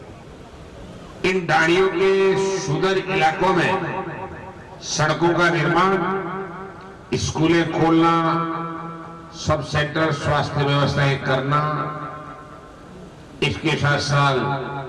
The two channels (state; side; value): identical; both; correlation 1.00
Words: इन डाड़ियों के सुदूर इलाकों में सड़कों का निर्माण, स्कूलें खोलना, सब सेंटर स्वास्थ्य व्यवस्थाएं करना, इसके साथ साथ